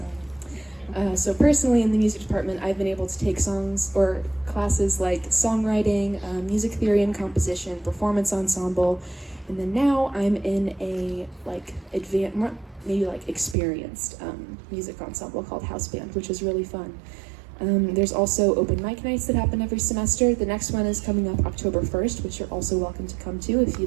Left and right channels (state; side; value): drops out; left; at 13.6 s